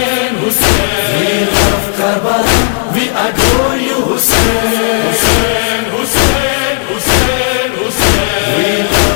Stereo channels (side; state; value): right; silent; digital silence